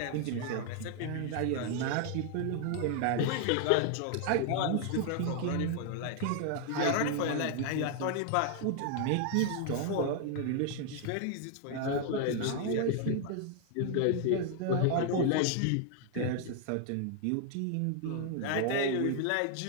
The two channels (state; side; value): different; both; correlation 0.00